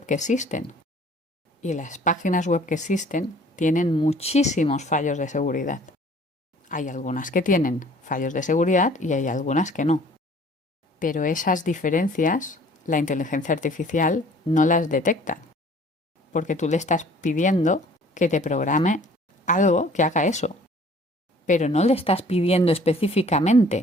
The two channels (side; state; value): both; normal; correlation 0.53